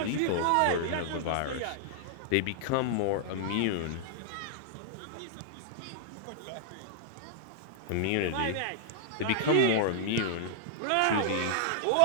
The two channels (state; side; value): different; both; correlation -0.01